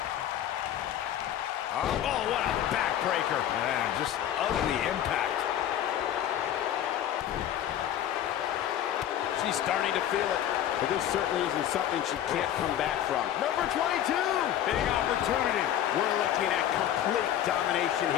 Oh, what a backbreaker. Man, just ugly impact. She's starting to feel it, but this certainly isn't something she can't come back from. Number 22. Big opportunity. We're looking at complete domination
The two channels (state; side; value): quieter; right; 11.1 dB